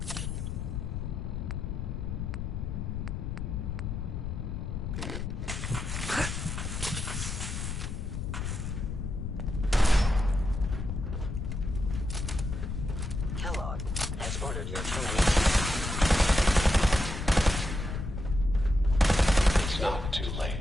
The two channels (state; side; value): noise; left; rumble, 4 dB below the sound